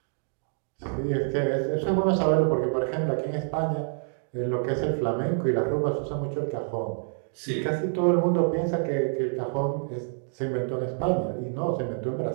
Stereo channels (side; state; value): left; silent; digital silence